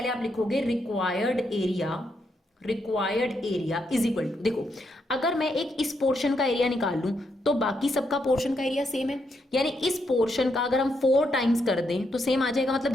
आप लिखोगे required area is equal to, देखो अगर मैं एक इस पोर्शन का एरिया निकाल लूं तो बाकी सबका पोर्शन का एरिया सेम है, यानी इस पोर्शन का अगर हम 4 टाइम्स कर दें तो सेम आ जाएगा। मतलब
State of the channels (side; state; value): both; normal; correlation 0.79